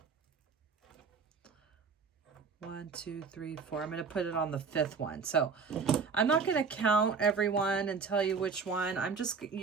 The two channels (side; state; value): left; quieter; 5.3 dB